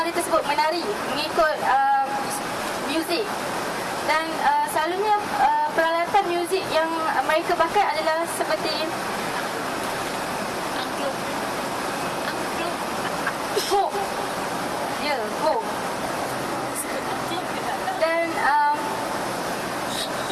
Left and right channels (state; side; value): identical; both; correlation 1.00